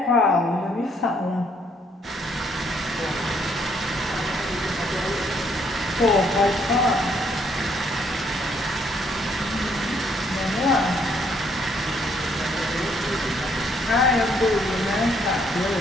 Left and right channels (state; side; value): normal; both; correlation 0.68